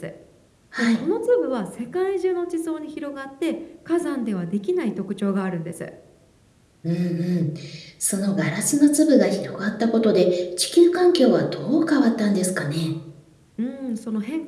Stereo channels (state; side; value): identical; both; correlation 1.00